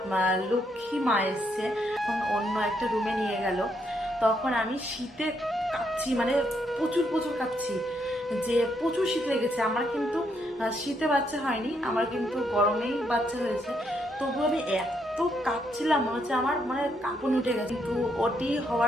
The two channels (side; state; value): both; normal; correlation 0.75